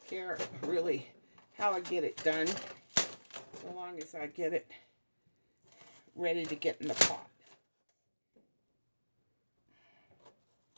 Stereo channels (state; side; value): inverted; both; correlation -1.00